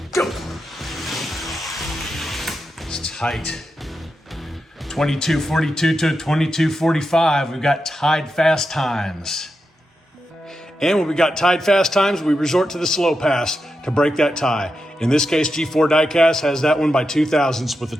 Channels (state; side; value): normal; both; correlation 0.88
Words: go. It's tight. 22:42 to 22:45. We've got tied fast times. And when we got tied fast times, we resort to the slow pass to break that tie. In this case, G4 Diecast has that one by 2 thousandths with a